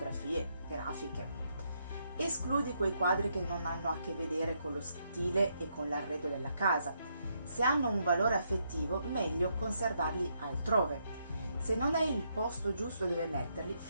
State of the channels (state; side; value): inverted; both; correlation -0.77